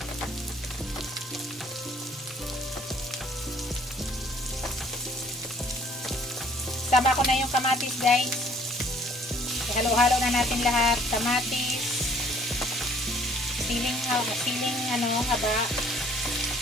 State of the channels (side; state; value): both; normal; correlation 0.58